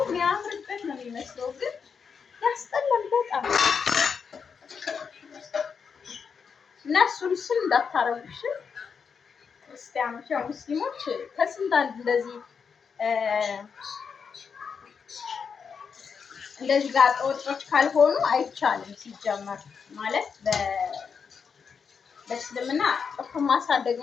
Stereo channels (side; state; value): right; quieter; 6.2 dB